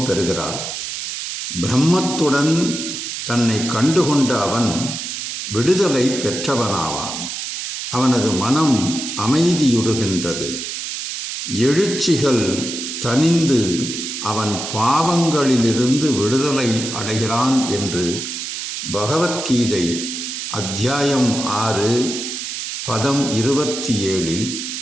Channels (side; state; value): right; noise; hiss, 5 dB below the sound